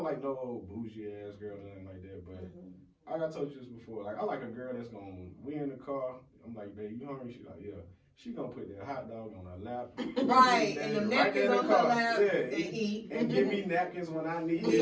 like no old bougie ass girl or nothing like that, but. Like I told you this before, like I like a girl that's we in the car. I'm like, babe, you hungry? She's like, yeah. She gonna put that hot dog on her lap, right, and the napkins on her lap, and eat, and give me napkins when I need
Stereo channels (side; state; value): both; identical; correlation 1.00